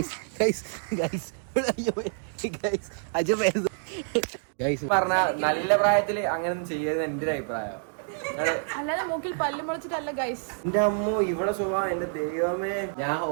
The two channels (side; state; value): left; silent; digital silence